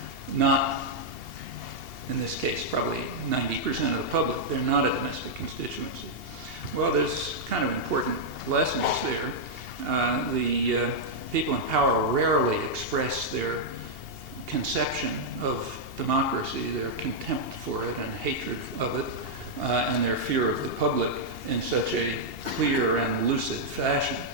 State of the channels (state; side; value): late; left; 2.8 ms